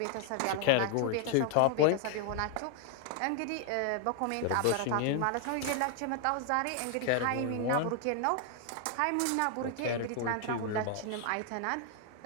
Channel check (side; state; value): both; different; correlation 0.00